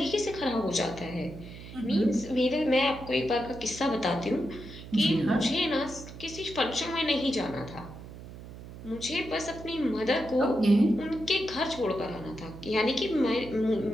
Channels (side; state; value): right; noise; hum, 14 dB below the sound